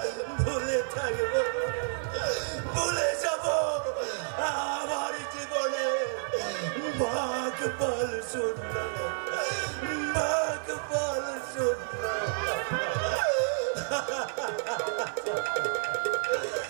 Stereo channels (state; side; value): silent; left; digital silence